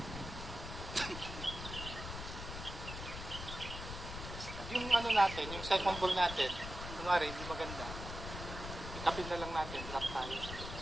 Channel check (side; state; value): left; noise; rumble, 8 dB below the sound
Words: ano natin, yung second ball natin, kunwari, hindi maganda. Itapin na lang natin, drop tayo.